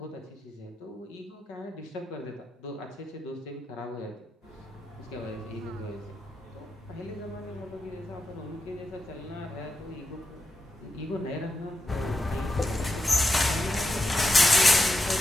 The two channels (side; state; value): both; normal; correlation 0.87